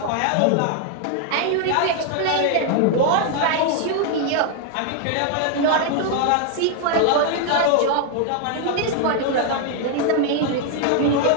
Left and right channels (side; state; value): both; different; correlation 0.00